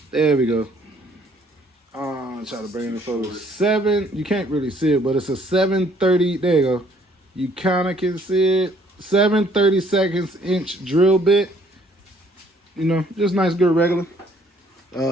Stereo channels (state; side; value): normal; both; correlation 0.62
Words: There we go. Try to bring it forward. 7. You can't really see it, but it's a 730. There you go. You kind of can see it. 7/32 drill bit. You know, just nice, good, regular.